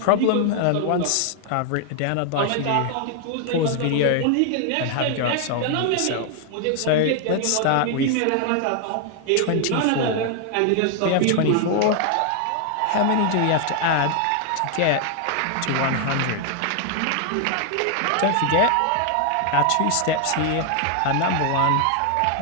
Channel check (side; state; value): both; different; correlation 0.00